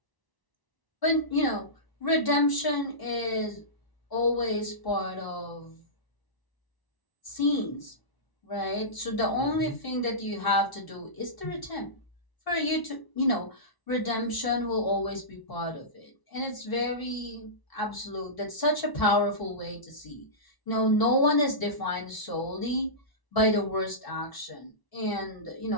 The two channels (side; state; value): right; late; 1.0 ms